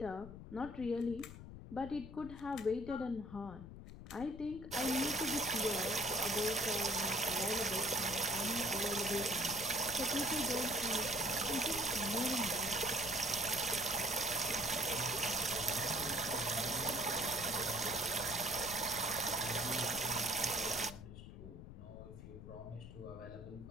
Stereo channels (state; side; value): noise; left; rumble, 13 dB below the sound